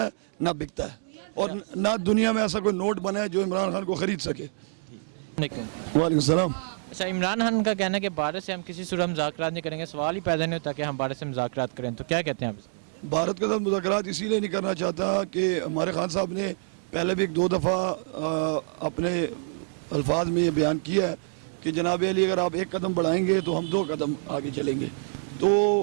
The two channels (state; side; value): silent; left; digital silence